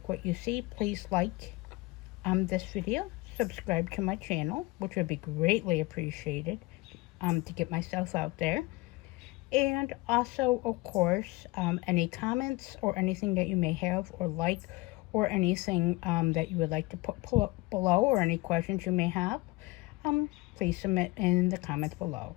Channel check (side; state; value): right; quieter; 22.1 dB